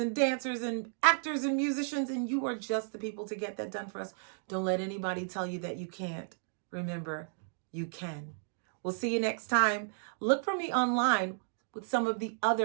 dancers and actors and musicians, and you are just the people to get that done for us. Don't let anybody tell you that you can't. Remember, you can. We'll see you next time. Look for me online with some of the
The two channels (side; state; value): left; silent; digital silence